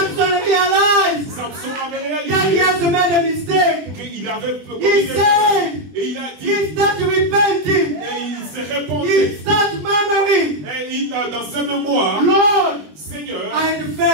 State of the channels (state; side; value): late; left; 20 ms